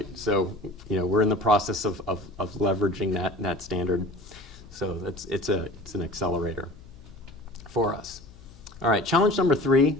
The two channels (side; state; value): left; noise; hum, 22 dB below the sound